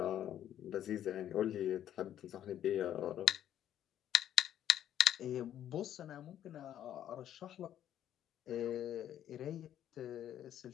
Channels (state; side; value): quieter; right; 11.0 dB